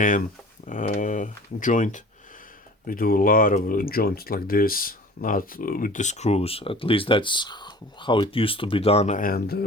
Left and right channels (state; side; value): normal; both; correlation 0.43